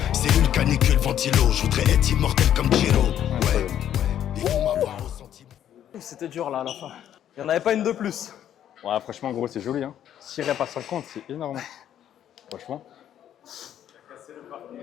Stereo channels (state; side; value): quieter; right; 10.5 dB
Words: cellule canicule ventilo. Je voudrais être immortel comme Giro. Ouais, ils vont m'avoir au sentiment. C'était dur là à la fin. Il n'y en avait pas une de plus. Ouais, franchement, gros, c'est joli. Hein. 6 reps à 50, c'est énorme. Franchement. Ce